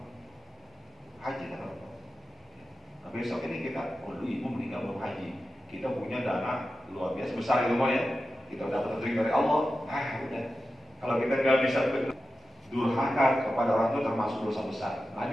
Hajikan orang tua. Nah, besok ini kita, dulu ibu meninggal belum haji. Kita punya dana luar biasa besar gitu ya. Kita dapat rezeki dari Allah. Udah. Kalau kita nggak bisa durhaka kepada orang tua termasuk dosa besar.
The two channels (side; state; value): both; normal; correlation 0.92